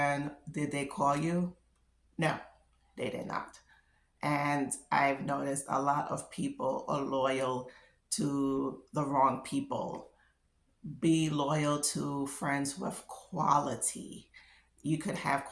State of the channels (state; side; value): identical; both; correlation 1.00